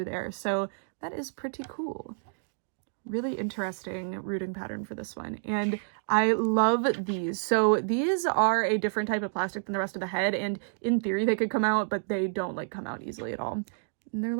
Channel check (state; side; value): silent; left; digital silence